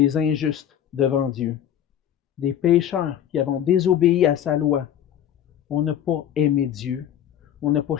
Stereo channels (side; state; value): right; quieter; 10.1 dB